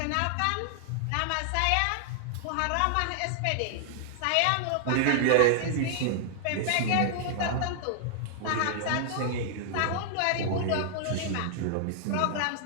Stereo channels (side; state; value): both; different; correlation -0.01